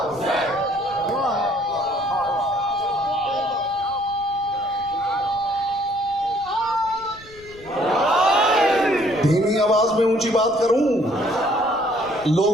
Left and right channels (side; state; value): left; noise; rumble, 23 dB below the sound